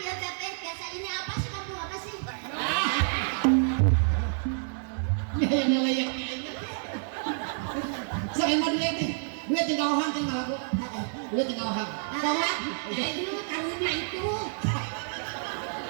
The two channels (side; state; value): left; silent; 58 dB below the other